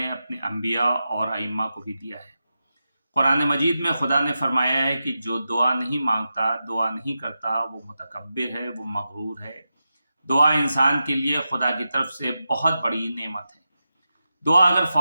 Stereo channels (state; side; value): inverted; both; correlation -0.91